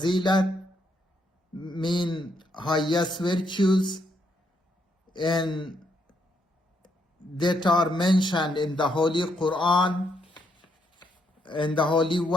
mean highest virtues, and that are mentioned in the Holy Quran and the Holy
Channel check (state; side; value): normal; both; correlation 0.75